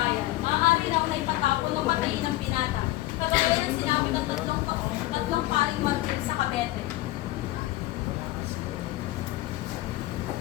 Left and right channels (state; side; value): quieter; right; 17.5 dB